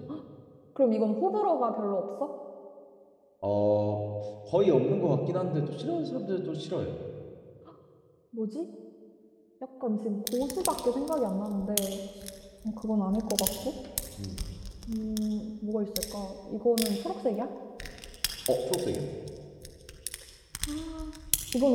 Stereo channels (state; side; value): identical; both; correlation 1.00